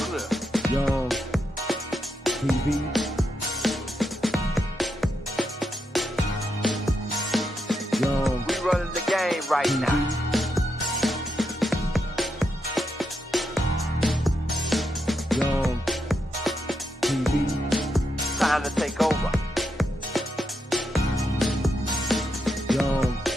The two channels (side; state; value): both; normal; correlation 0.82